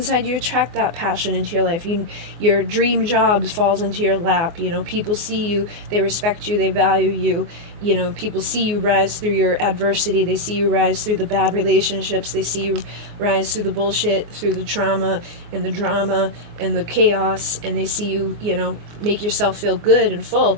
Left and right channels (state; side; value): late; left; 24 ms